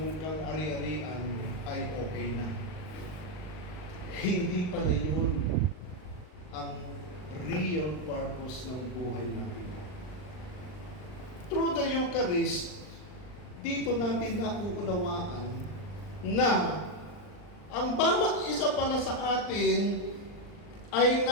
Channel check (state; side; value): late; right; 39 ms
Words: kang ari-arian, ay okay na. Hindi pala yun ang real purpose ng buhay natin. Through the Eucharist, dito natin nauunawaan na ang bawat isa pala sa atin ay